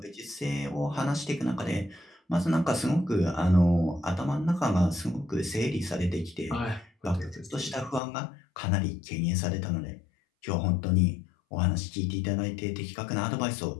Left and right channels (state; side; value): drops out; right; at 8.0 s